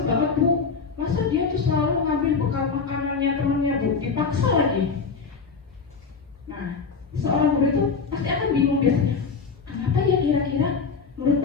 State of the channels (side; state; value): right; quieter; 5.1 dB